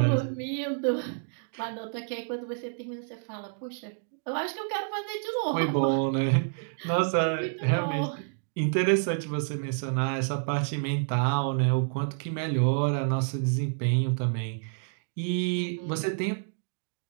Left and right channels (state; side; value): silent; left; digital silence